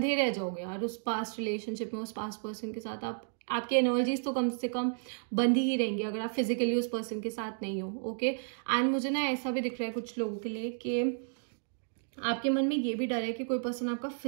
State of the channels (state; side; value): silent; left; digital silence